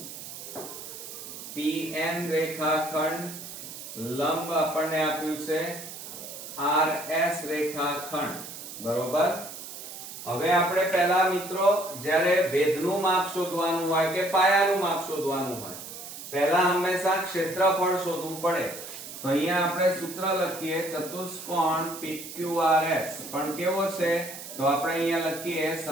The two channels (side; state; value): right; noise; hiss, 11 dB below the sound